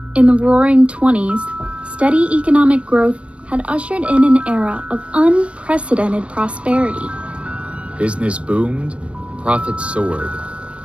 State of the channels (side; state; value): left; late; 0.061 ms